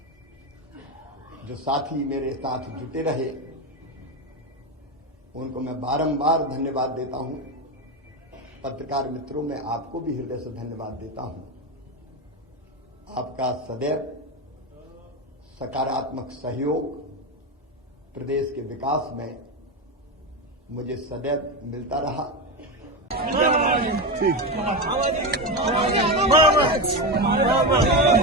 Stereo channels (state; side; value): normal; both; correlation 0.15